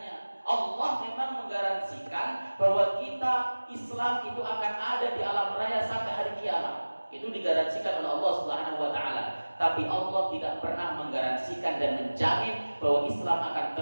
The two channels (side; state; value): both; inverted; correlation -1.00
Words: Allah memang menggaransikan bahwa kita Islam itu akan ada di alam raya sampai hari kiamat. Itu digaransikan oleh Allah Subhanahu wa taala. Tapi Allah tidak pernah menggaransikan dan menjamin bahwa Islam akan